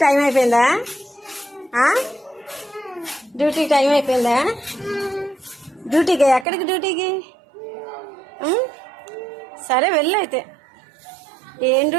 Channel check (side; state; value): left; drops out; at 6.5 s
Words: టైం అయిపోయిందా? డ్యూటీ టైం అయిపోయిందా? డ్యూటీకి ఎక్కడికి? డ్యూటీకి సరే వెళ్ళు అయితే. ఏం